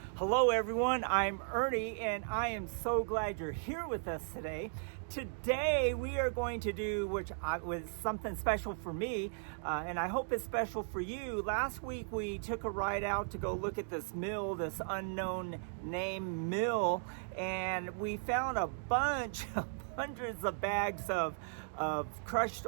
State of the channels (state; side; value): silent; left; digital silence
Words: Hello everyone, I'm Ernie and I am so glad you're here with us today. Today we are going to do with something special for me and I hope it's special for you. Last week we took a ride out to go look at this mill, this unknown name mill, and we found a bunch of hundreds of bags of crushed